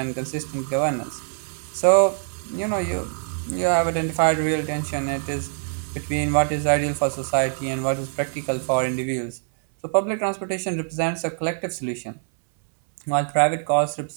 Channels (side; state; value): left; silent; 61 dB below the other